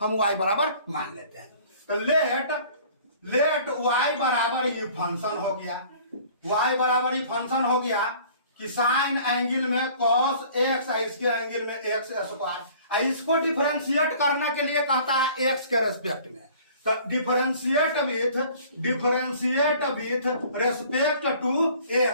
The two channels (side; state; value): both; inverted; correlation -0.51